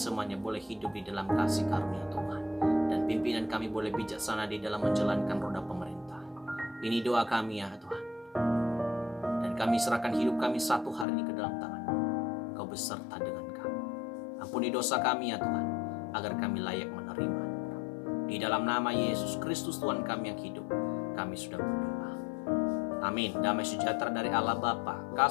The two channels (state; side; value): drops out; right; at 11.1 s